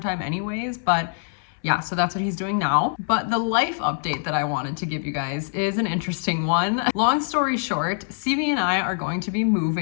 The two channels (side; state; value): right; silent; 63 dB below the other